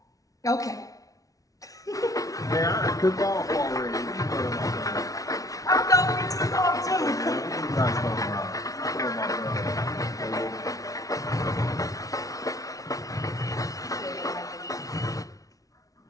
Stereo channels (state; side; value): late; right; 0.17 ms